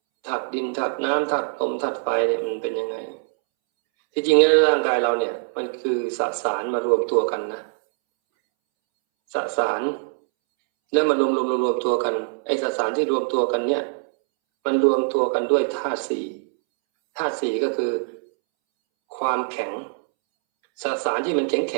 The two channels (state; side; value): silent; left; 63 dB below the other